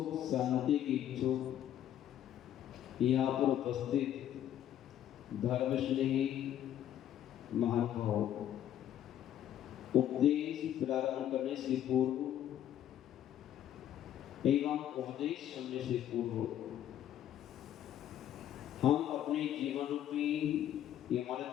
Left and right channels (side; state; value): right; quieter; 11.1 dB